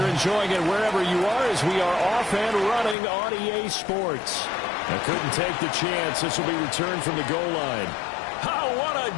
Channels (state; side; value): drops out; right; at 3.0 s